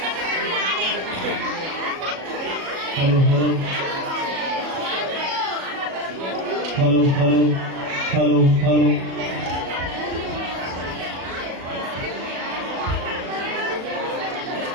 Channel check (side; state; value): left; late; 37 ms